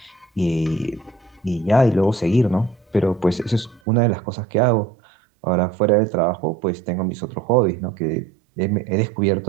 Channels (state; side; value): drops out; left; at 3.8 s